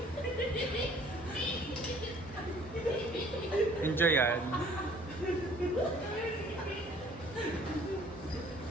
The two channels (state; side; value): normal; both; correlation 0.56